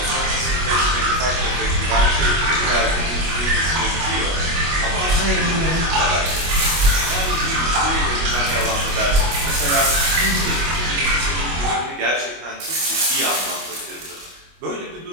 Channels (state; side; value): late; left; 25 ms